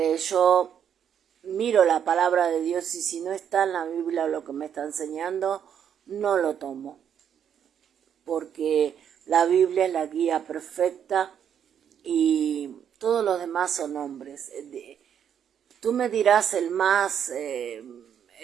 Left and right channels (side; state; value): left; quieter; 8.7 dB